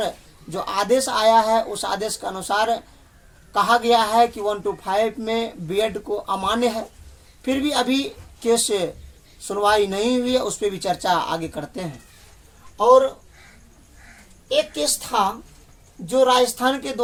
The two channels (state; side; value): identical; both; correlation 1.00